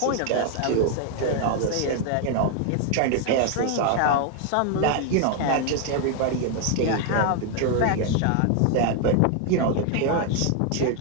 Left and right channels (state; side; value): different; both; correlation 0.00